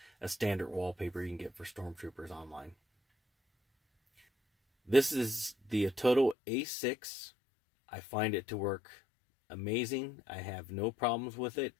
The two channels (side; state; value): right; drops out; at 6.4 s